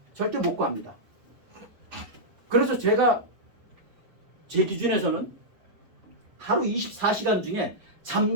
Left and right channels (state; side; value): late; left; 6.4 ms